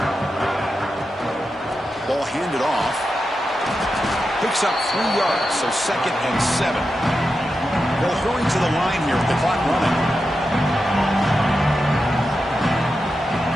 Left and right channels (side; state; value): both; normal; correlation 0.89